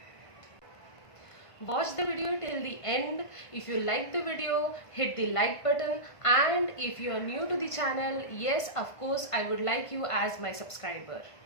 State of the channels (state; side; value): late; right; 1.5 ms